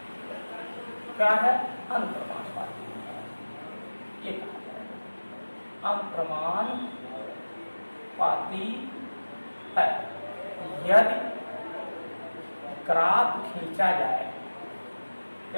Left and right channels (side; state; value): both; inverted; correlation -1.00